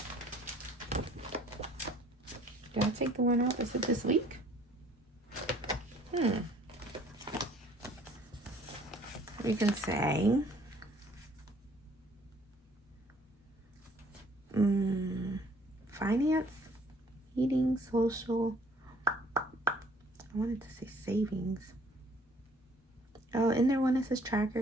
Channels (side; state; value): both; normal; correlation 0.58